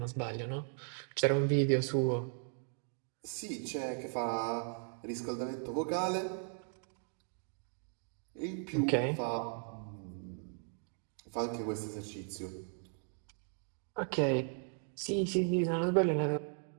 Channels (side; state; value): left; silent; 53 dB below the other